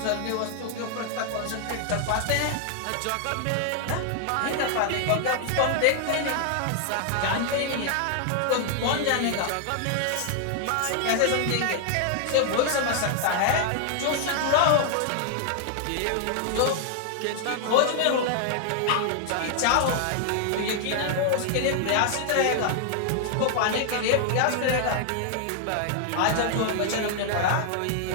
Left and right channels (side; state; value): both; different; correlation 0.00